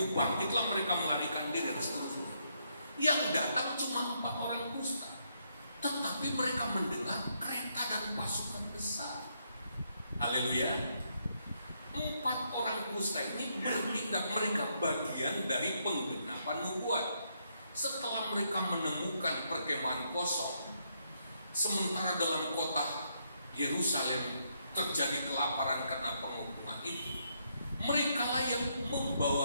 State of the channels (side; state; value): both; inverted; correlation -0.76